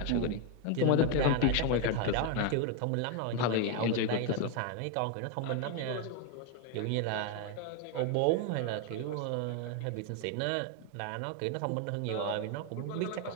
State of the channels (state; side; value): different; both; correlation 0.01